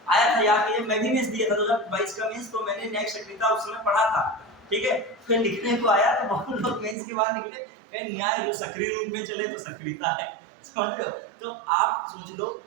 आया था याद कीजिए, मैं भी मेंस दिया था 2022 का मेंस, तो मैंने न्यायिक सक्रियता उस समय पढ़ा था, ठीक है। फिर लिखने को आया तो बहुत लोग मेंस के बाद निकले न्याय सक्रिय रूप में चले तो सक्रियता है। समझ लो? तो आप सोच लो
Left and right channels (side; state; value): left; drops out; at 7.0 s